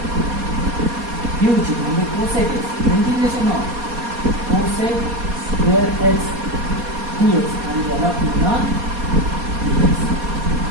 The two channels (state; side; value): late; left; 4.2 ms